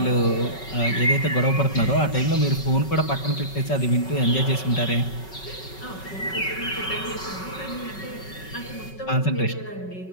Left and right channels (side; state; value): right; late; 5.3 ms